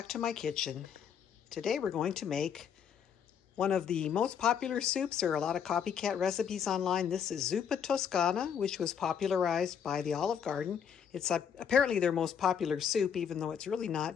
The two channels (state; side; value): quieter; right; 7.9 dB